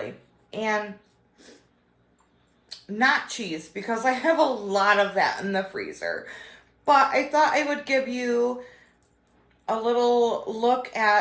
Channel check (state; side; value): identical; both; correlation 1.00